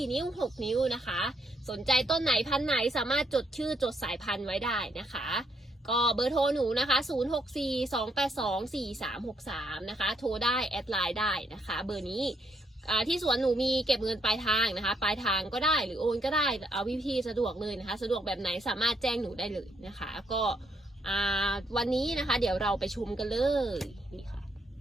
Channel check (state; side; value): normal; both; correlation 0.74